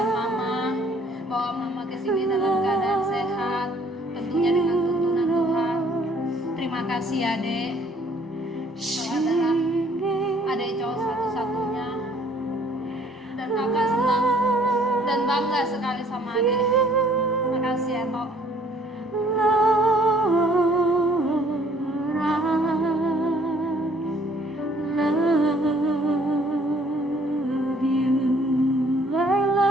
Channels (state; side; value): normal; both; correlation 0.60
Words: mama, bawa mama ke sini dalam keadaan sehat, tentunya dengan tuntunan Tuhan. Terima kasih ya Dek. Kau adalah adik cowok satu-satunya, dan kakak senang dan bangga sekali sama adik. Makasih ya Tok.